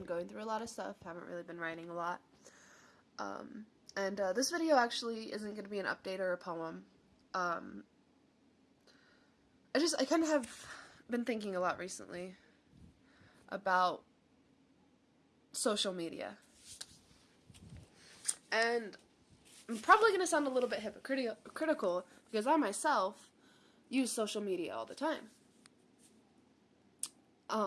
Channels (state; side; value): identical; both; correlation 1.00